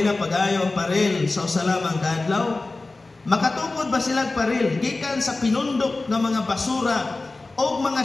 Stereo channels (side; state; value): right; quieter; 3.3 dB